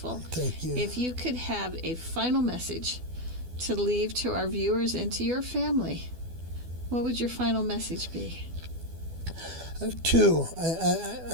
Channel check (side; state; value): left; late; 12 ms